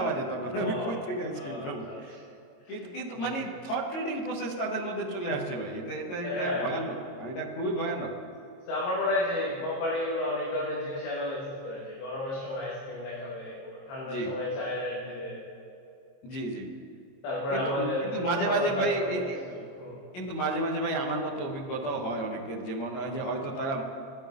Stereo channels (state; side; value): late; right; 22 ms